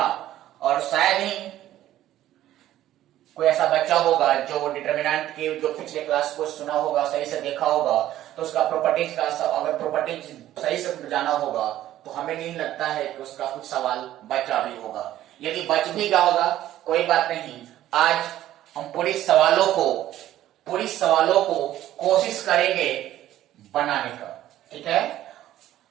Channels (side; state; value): left; quieter; 13.3 dB